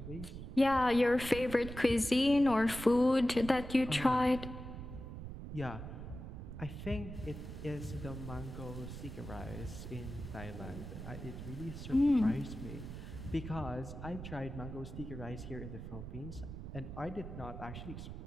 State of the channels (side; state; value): right; noise; rumble, 9 dB below the sound